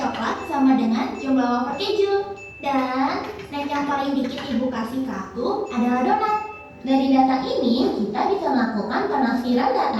sama dengan jumlah wafer keju. Dan snack yang paling dikit ibu kasih ke aku adalah donat. Dari data ini kita bisa melakukan penafsiran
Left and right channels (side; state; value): both; identical; correlation 1.00